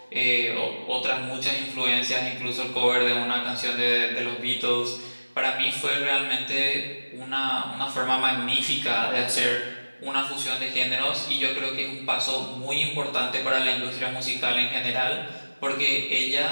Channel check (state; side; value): inverted; both; correlation -1.00